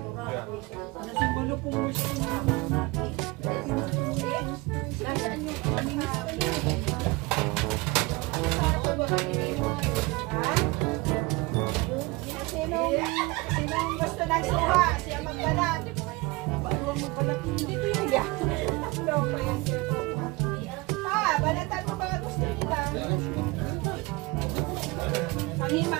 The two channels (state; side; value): quieter; left; 23.3 dB